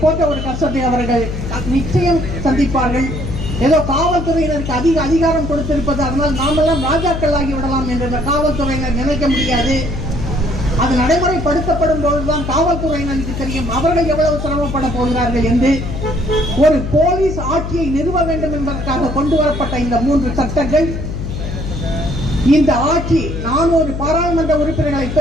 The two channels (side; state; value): left; noise; hum, 5 dB below the sound